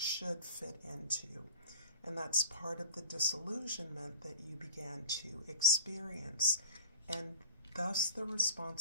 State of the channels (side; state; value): both; inverted; correlation -0.43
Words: fit into. And that's part of the disillusionment that you began to experience, and thus the